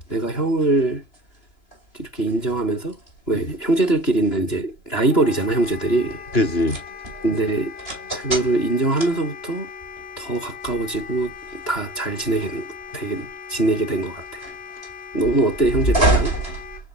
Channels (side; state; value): right; late; 2.9 ms